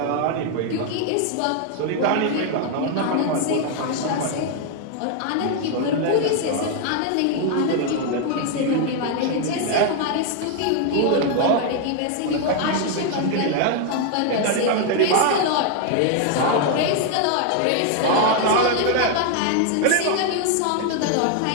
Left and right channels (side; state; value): both; different; correlation 0.00